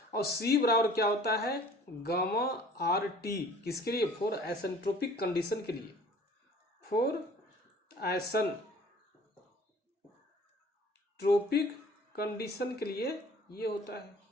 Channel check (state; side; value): normal; both; correlation 0.50